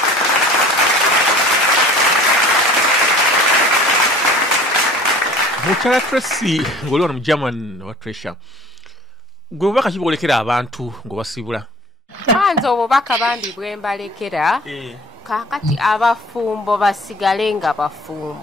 Mukyala Tracy ng'oli wano mu German wa Treasure gwe bubaka ki bwolekera abantu ng'obasibula? Kwanza obubaka bambi bwe mbalekera kakati abafumbo basigale nga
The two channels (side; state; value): both; normal; correlation 0.47